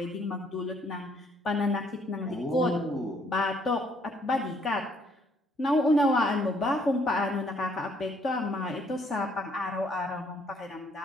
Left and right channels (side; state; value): both; normal; correlation 0.66